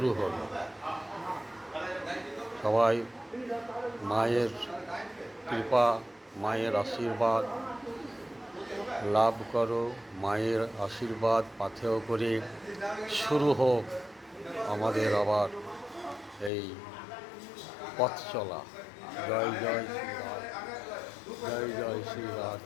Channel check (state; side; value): drops out; right; at 16.5 s